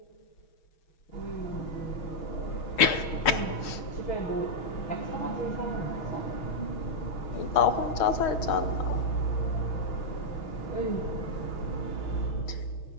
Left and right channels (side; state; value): right; late; 6.3 ms